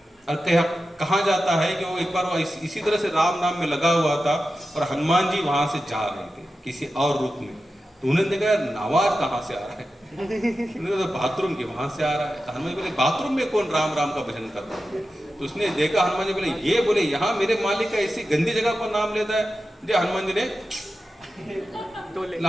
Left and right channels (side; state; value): both; normal; correlation 0.92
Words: और कहा जाता है कि वो एक बार वो इसी तरह से राम नाम में लगा हुआ था और हनुमान जी वहां से जा रहे थे किसी और रूप में। तो उन्होंने देखा आवाज कहाँ से आ रहा है, उन्होंने तो बाथरूम के वहां से आ रहा है। तो हनुमान जी बोले बाथरूम में कौन राम राम का भजन कर रहा है? तो उसने देखा, हनुमान जी बोले ये, बोले यहाँ मेरे मालिक का ऐसी गंदी जगह पर नाम लेता है। जो हनुमान जी ने